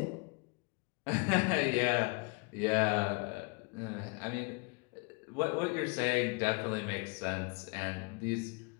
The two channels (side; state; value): right; quieter; 29.8 dB